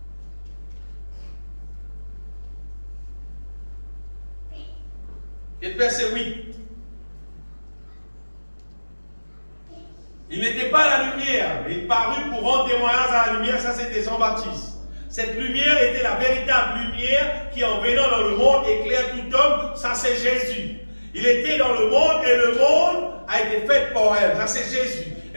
Et le verset 8. Il n'était pas à la lumière, mais il parut pour rendre témoignage à la lumière. Ça, c'était Jean-Baptiste. Cette lumière était la véritable lumière qui, en venant dans le monde, éclaire tout homme. Ça, c'est Jésus. Il était dans le monde et le monde a été fait par elle. Ça, c'est Jésus.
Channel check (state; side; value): inverted; both; correlation -1.00